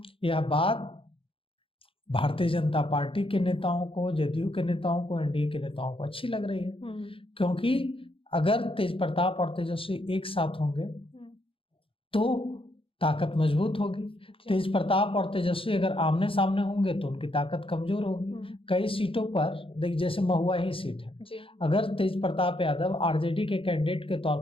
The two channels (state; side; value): late; right; 0.26 ms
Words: यह बात भारतीय जनता पार्टी के नेताओं को, जदयू के नेताओं को, एनडीए के नेताओं को अच्छी लग रही है, क्योंकि अगर तेज प्रताप और तेजस्वी एक साथ होंगे तो ताकत मजबूत होगी। तेज प्रताप और तेजस्वी अगर आमने सामने होंगे तो उनकी ताकत कमजोर होगी। कई सीटों पर देख, जैसे महुआ ही सीट है, अगर तेज प्रताप यादव आरजेडी के कैंडिडेट के तौर